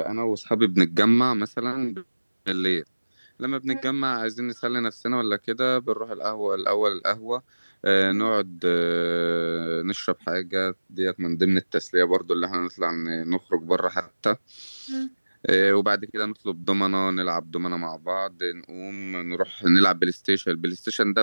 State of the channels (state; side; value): inverted; both; correlation -1.00